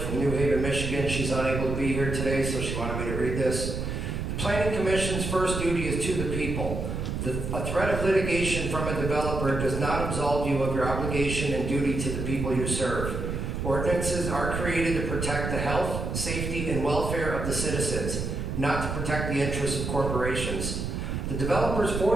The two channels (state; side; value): noise; right; rumble, 3 dB below the sound